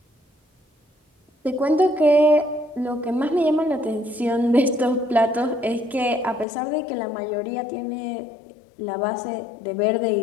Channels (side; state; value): right; drops out; at 6.5 s